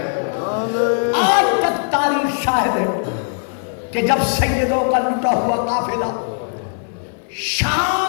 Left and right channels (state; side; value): silent; right; 58 dB below the other